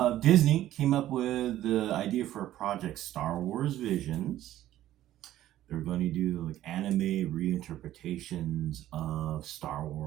Disney came up with the idea for a project, Star Wars Visions. They're going to do like anime reinterpretations of Star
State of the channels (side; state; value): left; quieter; 13.5 dB